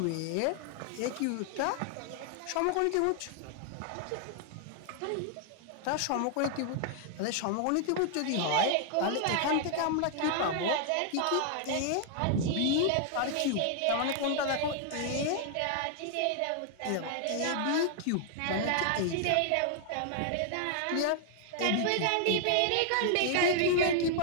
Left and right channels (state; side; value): different; both; correlation 0.00